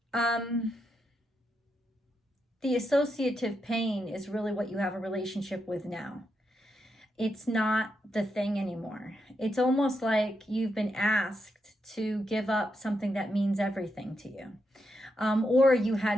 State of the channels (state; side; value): normal; both; correlation 0.83